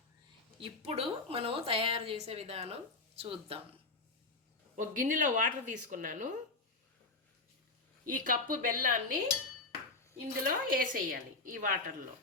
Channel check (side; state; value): right; quieter; 3.4 dB